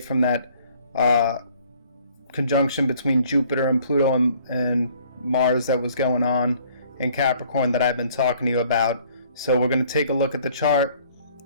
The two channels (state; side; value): inverted; both; correlation -0.58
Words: that conjunction between Jupiter and Pluto and Mars that was going on in Capricorn that I've been talking to you about. So we're going to take a look at the chart.